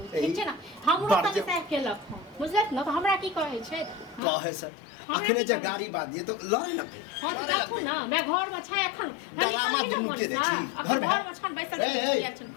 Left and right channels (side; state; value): right; drops out; at 4.2 s